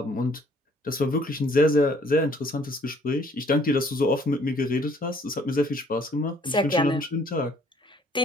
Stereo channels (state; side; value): normal; both; correlation 0.61